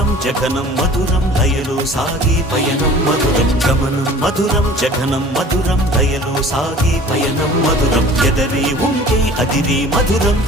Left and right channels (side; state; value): both; normal; correlation 0.45